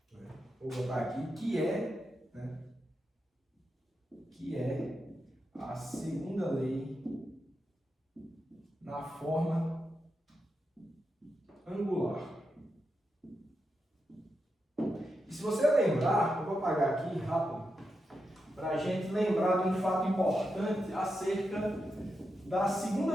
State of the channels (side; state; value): both; normal; correlation 0.87